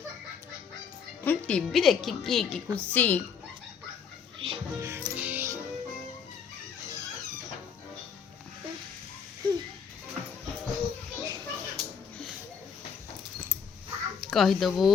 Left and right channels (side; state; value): right; quieter; 6.7 dB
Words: टीवी देखिकी कि खुशी कहीदेबू